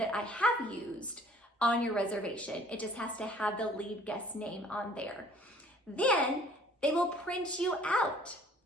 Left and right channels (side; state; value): both; normal; correlation 0.55